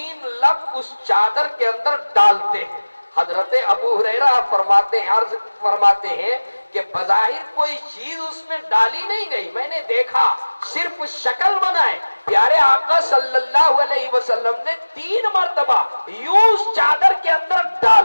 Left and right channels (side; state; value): both; inverted; correlation -1.00